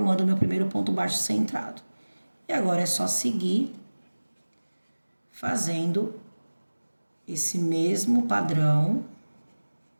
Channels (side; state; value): both; inverted; correlation -1.00